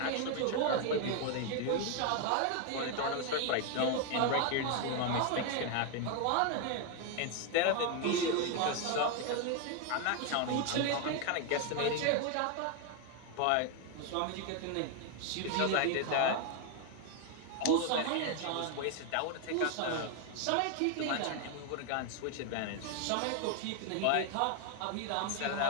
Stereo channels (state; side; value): different; both; correlation 0.01